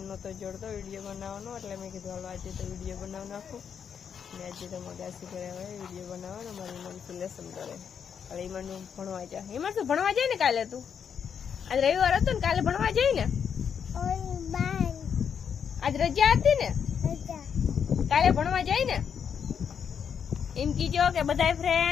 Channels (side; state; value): right; quieter; 7.4 dB